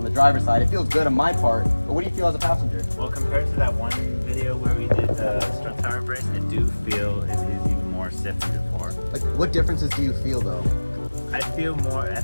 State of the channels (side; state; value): both; inverted; correlation -1.00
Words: the driver's side. It feels good on my part, but what do you feel as a passenger? well, compared to that one video where we did the strut tower brace, I do feel it is even more stiff than before. Like, what differences do you feel though? I feel